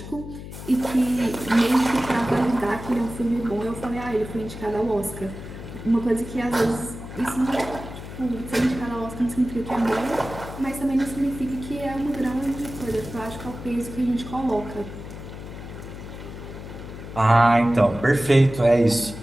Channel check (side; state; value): left; noise; hum, 11 dB below the sound